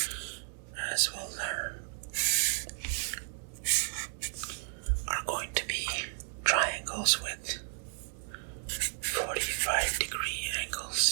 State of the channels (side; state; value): left; silent; 56 dB below the other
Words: as we'll learn, are going to be triangles with 45-degree